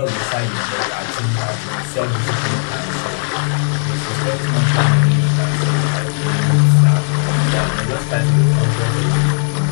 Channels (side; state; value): right; silent; 69 dB below the other